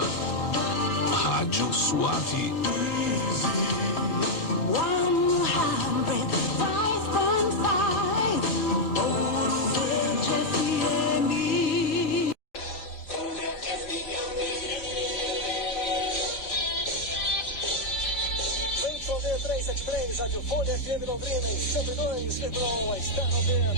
Rádio Suave. Rádio Folha FM Londrina em 102,1, está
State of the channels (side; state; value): right; late; 4.5 ms